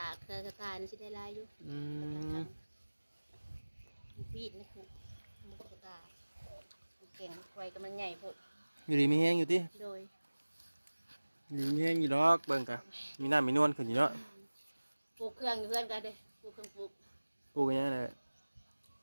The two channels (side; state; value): both; inverted; correlation -1.00